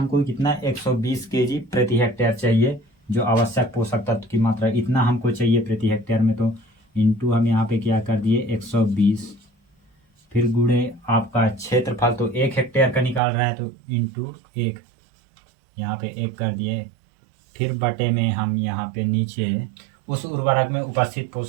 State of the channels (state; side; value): drops out; left; at 13.2 s